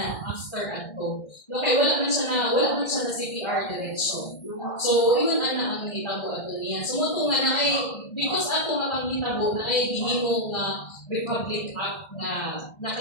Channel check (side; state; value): right; late; 1.6 ms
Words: after ato. No, kay wala man siya na CPR diretso. So iyon ana ang nahitabo ato niya. So mo nga na ay because ato nga panghitabo na ay gihimo nga Republic Act na